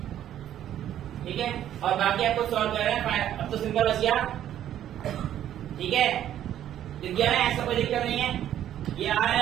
ठीक है, और बाकी आपको सॉल्व कर रहे हैं। अब तो सिंपल बच गया। ठीक है, दिख गया ना? ऐसा कोई दिक्कत नहीं है। ये आ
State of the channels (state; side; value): quieter; left; 11.2 dB